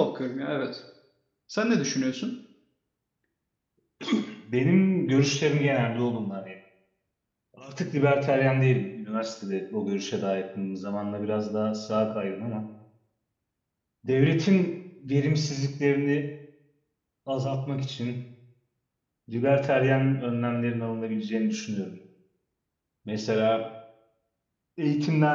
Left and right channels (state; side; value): identical; both; correlation 1.00